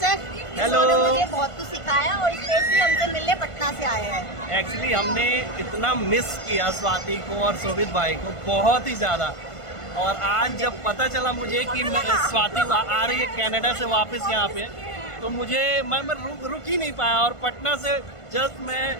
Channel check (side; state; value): right; late; 1.5 ms